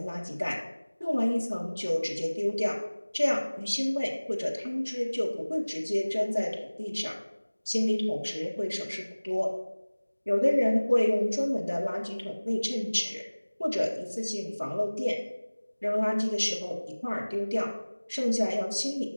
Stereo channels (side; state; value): both; inverted; correlation -1.00